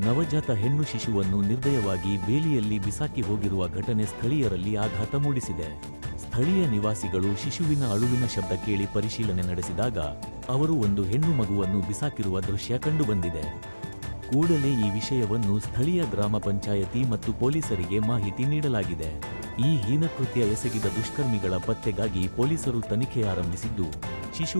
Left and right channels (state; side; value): inverted; both; correlation -1.00